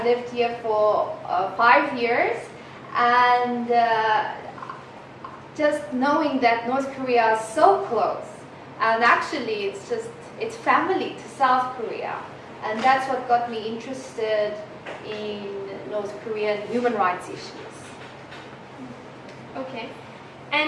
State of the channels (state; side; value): identical; both; correlation 1.00